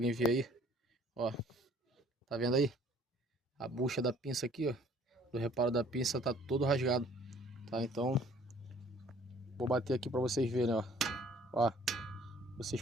ver aí, ó. Tá vendo aí? A bucha da pinça aqui, ó. Do reparo da pinça tá todo rasgado, tá? Então, vou bater aqui para vocês verem, ó. Ó, vocês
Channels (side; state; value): both; normal; correlation 0.56